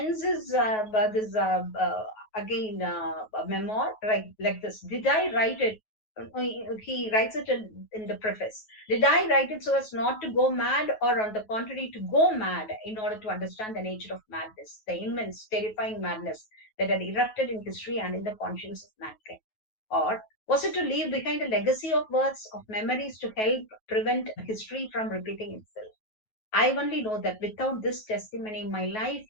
his this again memoir like this. Did I write it? He writes it in the preface. Did I write it so as not to go mad, or on the contrary, to go mad in order to understand the nature of madness, the immense, terrifying madness that had erupted in history and in the conscience of mankind? Or was it to leave behind a legacy of words, of memories to help prevent history from repeating itself? I only know that without this testimony, my life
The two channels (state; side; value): late; right; 9.3 ms